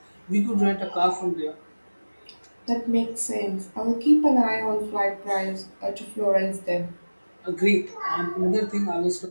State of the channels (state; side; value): inverted; both; correlation -1.00